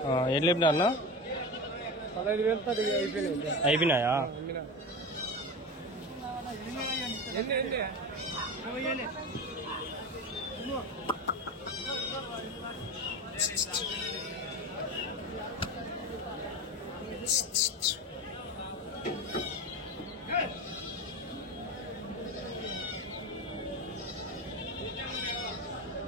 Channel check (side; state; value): both; normal; correlation 0.25